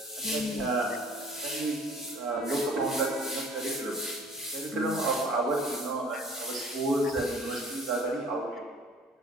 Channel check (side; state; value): both; normal; correlation 0.51